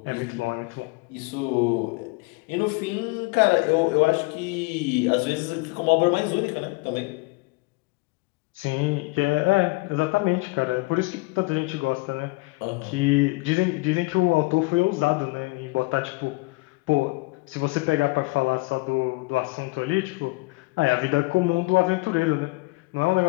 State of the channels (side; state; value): right; quieter; 25.0 dB